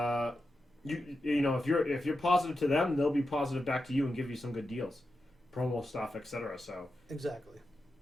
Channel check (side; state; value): both; normal; correlation 0.89